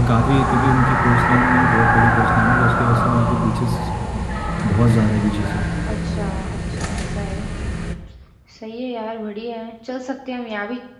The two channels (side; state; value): both; identical; correlation 1.00